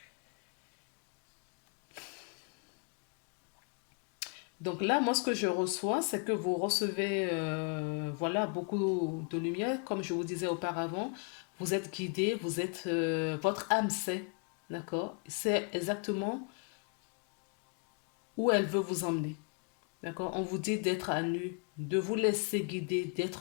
Donc là, moi, ce que je reçois, c'est que vous recevez, voilà, beaucoup de lumière. Comme je vous disais auparavant, vous êtes guidé, vous êtes, votre âme sait, d'accord? C'est exactement où elle veut vous emmener, d'accord? On vous dit d'être à nu, de vous laisser guider,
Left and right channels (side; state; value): right; quieter; 38.0 dB